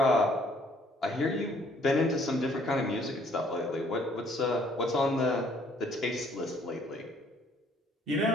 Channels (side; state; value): both; normal; correlation 0.63